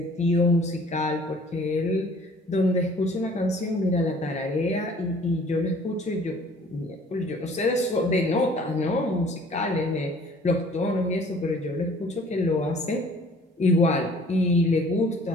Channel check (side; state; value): both; normal; correlation 0.53